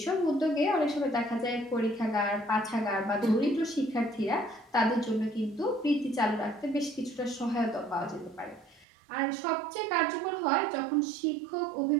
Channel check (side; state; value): left; drops out; at 8.8 s